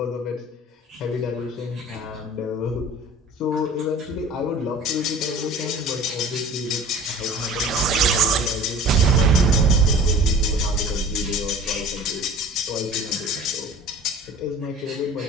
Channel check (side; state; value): both; normal; correlation 0.43